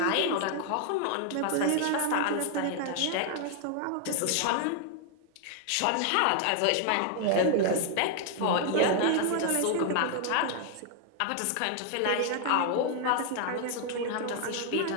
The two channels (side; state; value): both; different; correlation 0.00